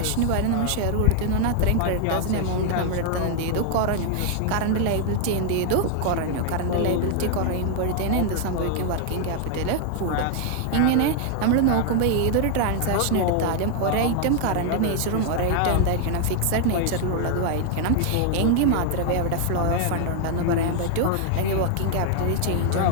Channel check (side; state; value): both; different; correlation 0.00